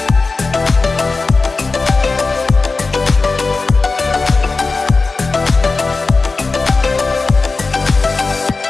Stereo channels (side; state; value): right; quieter; 3.9 dB